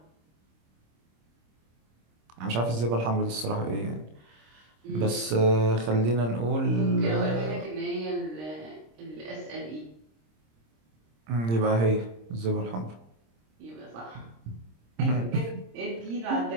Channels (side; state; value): left; late; 26 ms